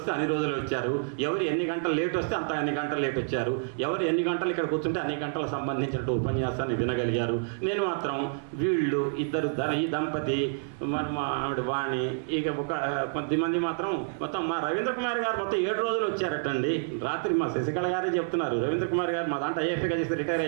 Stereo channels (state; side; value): silent; left; 59 dB below the other